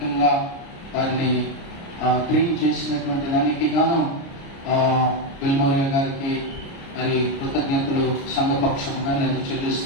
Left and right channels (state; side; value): late; right; 29 ms